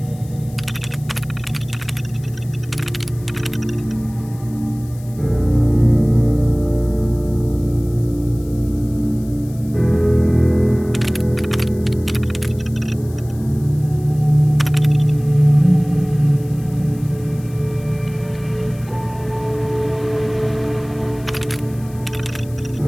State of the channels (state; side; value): noise; left; hiss, 23 dB below the sound